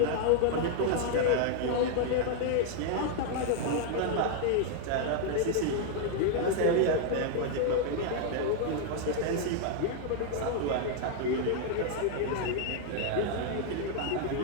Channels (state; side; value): different; both; correlation 0.00